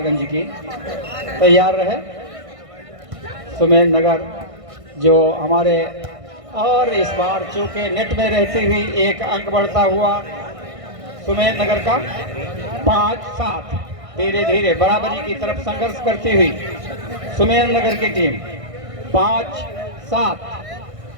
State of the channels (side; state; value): left; late; 1.6 ms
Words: की। तैयार रहे सुमेर नगर जो हमारे, और इस बार चूंकि नेट में रहती हुई एक अंक बढ़ता हुआ सुमेर नगर का 5-7, धीरे धीरे बराबरी की तरफ संघर्ष करती हुई सुमेर नगर की टीम 5-7।